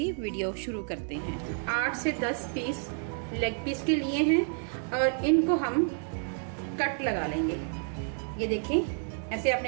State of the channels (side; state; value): left; silent; 55 dB below the other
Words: वीडियो शुरू करते हैं। 8 से 10 पीस लेग पीस के लिए हैं और इनको हम कट लगा लेंगे। ये देखिए, ऐसे